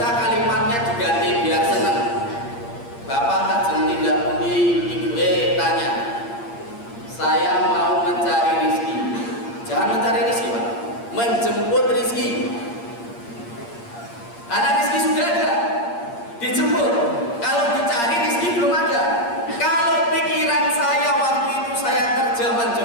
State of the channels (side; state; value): right; late; 8.6 ms